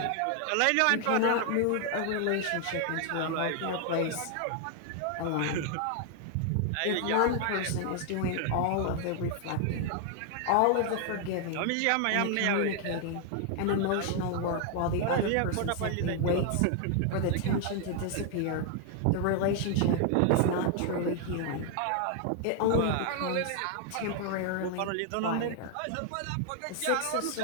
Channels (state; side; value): different; both; correlation 0.00